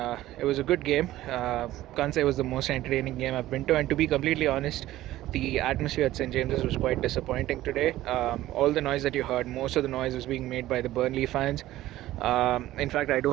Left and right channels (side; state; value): left; quieter; 15.2 dB